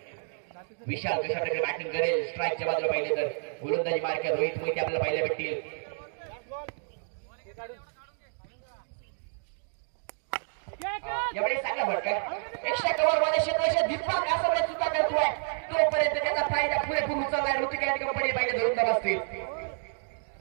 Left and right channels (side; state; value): left; silent; 58 dB below the other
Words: विशाल कशा प्रकारे बॅटिंग करेल स्ट्राईकच्या बाजूला पाहिले तर गोलंदाजी मार्ग रोहित मोहिते आपल्याला पाहायला भेटतील. यावेळी चांगला फटका एक्स्ट्रा कव्हर मध्ये क्षेत्राच्या दीपक आसवले चुका करतोय. तोपर्यंत त्याचा फायदा पुरेपूर उचललाय. ऋतिक कंपनी पाहिजे 2 धावा असतील.